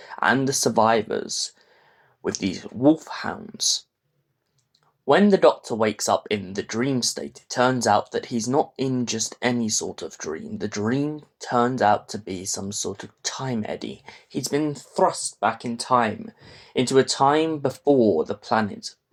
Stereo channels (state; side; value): identical; both; correlation 1.00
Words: and the survivors, with these wolfhounds. When the Doctor wakes up in the dream state, it turns out that he's not in just any sort of dream. The dream turns out to be some sort of time eddy. He's been thrust back in time, into a time before the planet